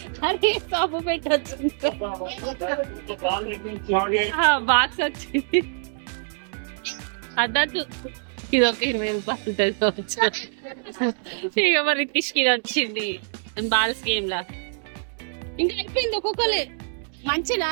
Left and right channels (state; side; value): silent; left; 62 dB below the other